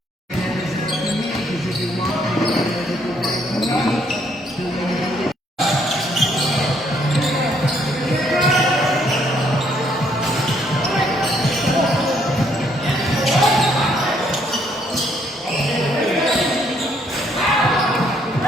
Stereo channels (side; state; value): both; normal; correlation 0.69